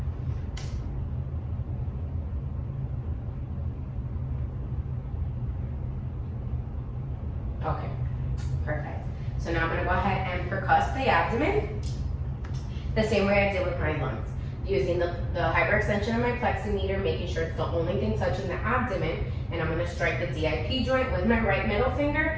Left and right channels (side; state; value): both; identical; correlation 1.00